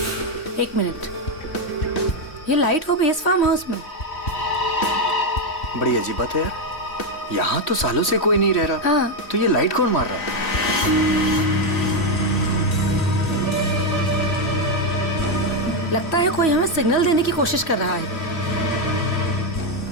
एक मिनट, ये लाइट वो भी इस फार्म हाउस में? बड़ी अजीब बात है यार, यहाँ तो सालों से कोई नहीं रह रहा। हाँ। तो ये लाइट कौन मार रहा है? लगता है कोई हमें सिग्नल देने की कोशिश कर रहा है,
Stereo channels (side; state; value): right; late; 3.1 ms